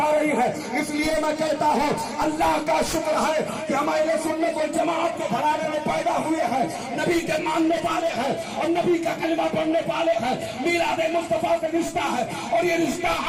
رہی ہے۔ اس لیے میں کہتا ہوں اللہ کا شکر ہے کہ ہمارے سنت والجماعت کے گھرانے میں پیدا ہوئے ہیں، نبی کے ماننے والے ہیں اور نبی کا کلمہ پڑھنے والے ہیں۔ میلاد مصطفیٰ سے رشتہ ہے اور یہ رشتہ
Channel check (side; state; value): both; identical; correlation 1.00